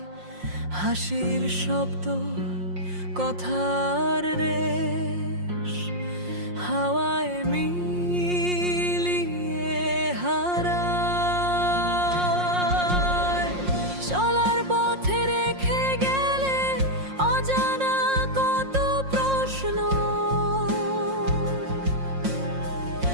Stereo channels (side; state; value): left; late; 5.6 ms